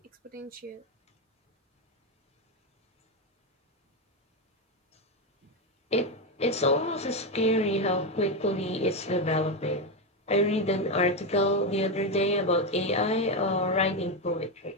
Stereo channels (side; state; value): both; normal; correlation 0.10